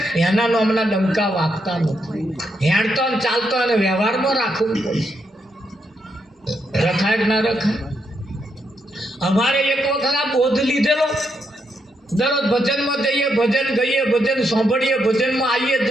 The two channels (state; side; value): normal; both; correlation 0.79